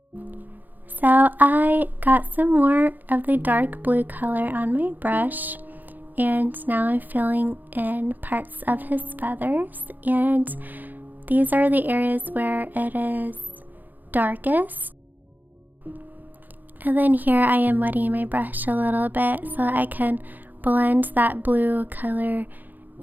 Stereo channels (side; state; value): left; late; 0.085 ms